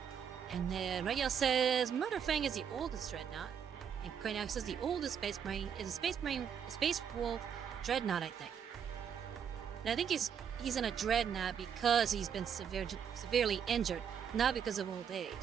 And then Regia says Murderfang is the oldest dreadnought. And Craniac says the oldest Space Marine is a Space Wolf dreadnought, I think. And I think he's in a dreadnought because he's been severely injured, not because of old age.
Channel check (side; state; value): left; quieter; 7.8 dB